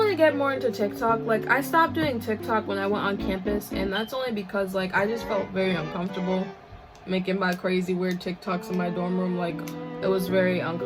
to get more into TikTok. Like, I stopped doing TikTok when I went on campus, and that's only because like I just felt very uncomfortable making my crazy weird TikToks in my dorm room. Like, it was very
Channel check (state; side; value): identical; both; correlation 1.00